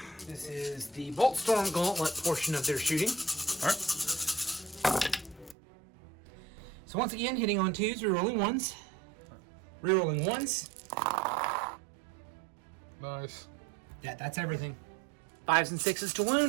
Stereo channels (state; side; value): drops out; left; at 5.6 s